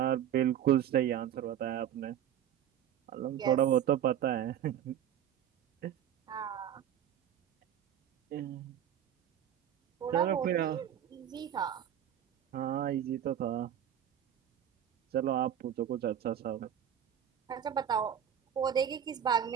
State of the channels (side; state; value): left; quieter; 9.9 dB